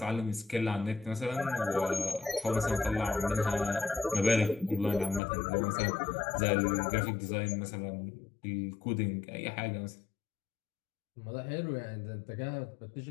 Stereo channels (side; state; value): right; drops out; at 5.2 s